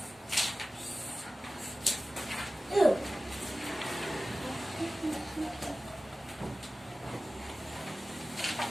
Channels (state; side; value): normal; both; correlation 0.96